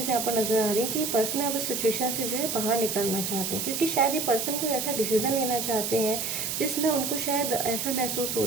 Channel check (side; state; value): right; noise; hiss, 2 dB below the sound